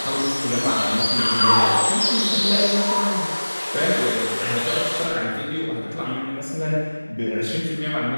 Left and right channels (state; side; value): inverted; both; correlation -1.00